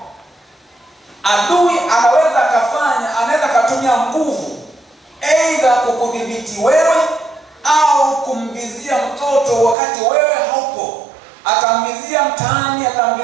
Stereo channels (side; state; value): left; drops out; at 9.8 s